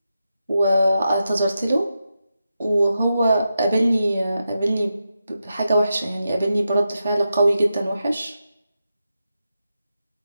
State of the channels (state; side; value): inverted; both; correlation -0.88